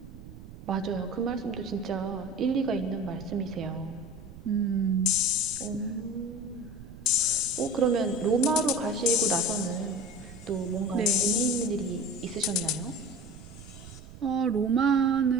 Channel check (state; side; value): noise; right; rumble, 16 dB below the sound